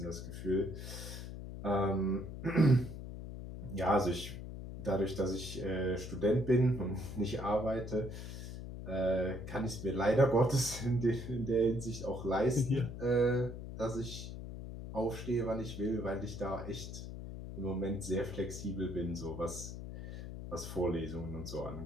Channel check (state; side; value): noise; left; hum, 9 dB below the sound